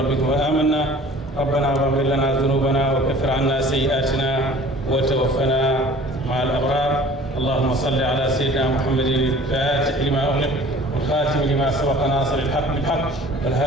فآمنا ربنا واغفر لنا ذنوبنا وكفر عنا سيئاتنا وتوفنا مع الأبرار اللهم صل على سيدنا محمد الفاتح لما أغلق والخاتم لما سبق ناصر الحق بالحق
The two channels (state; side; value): normal; both; correlation 0.47